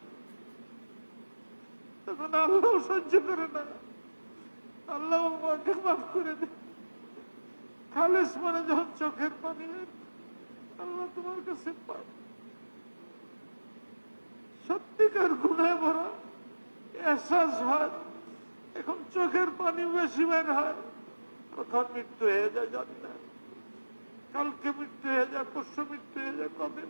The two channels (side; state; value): both; inverted; correlation -1.00